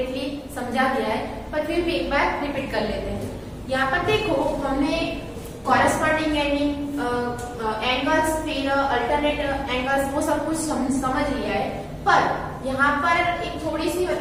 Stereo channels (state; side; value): identical; both; correlation 1.00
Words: समझा दिया है, पर फिर भी एक बार रिपीट कर लेते हैं। यहाँ पर देखो हमने कॉरेस्पॉन्डिंग एंगल्स, फिर अल्टरनेट एंगल्स, वो सब कुछ समझ लिया है। पर यहाँ पर एक थोड़ी सी